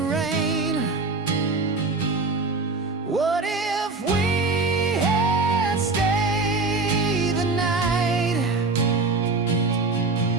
What if we had stayed the night?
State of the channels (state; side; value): quieter; left; 3.6 dB